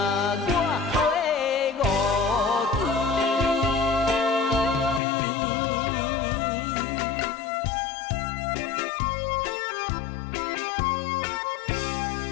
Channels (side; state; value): right; drops out; at 5.0 s